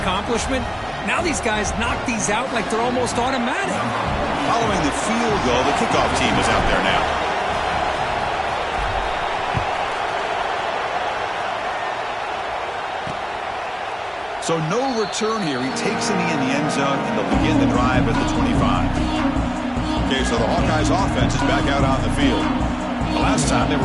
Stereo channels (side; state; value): both; identical; correlation 1.00